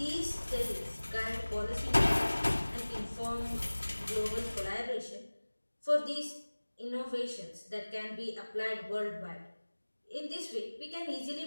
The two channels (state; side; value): inverted; both; correlation -1.00